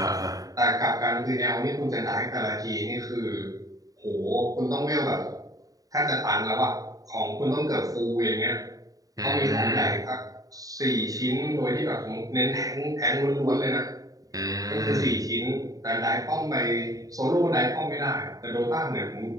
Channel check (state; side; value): late; left; 0.18 ms